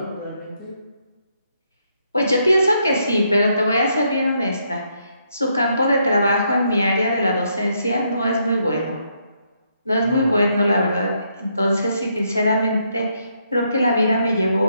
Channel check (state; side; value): inverted; both; correlation -0.75